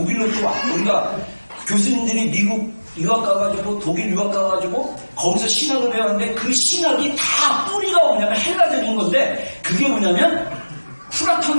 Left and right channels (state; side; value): inverted; both; correlation -1.00